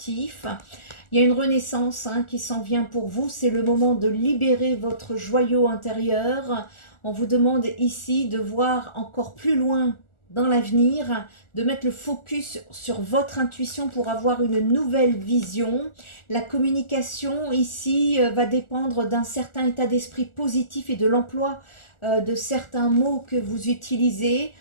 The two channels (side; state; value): right; late; 1.4 ms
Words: Il y a une renaissance qui s'en vient pour vous. C'est le moment de libérer votre joyau intérieur. On vous demande ici de voir encore plus loin dans l'avenir, de mettre le focus sur votre intuition pour avoir une nouvelle vision. La communication ici va dépendre d'un certain état d'esprit positif et de l'emploi de certains mots que vous utilisez.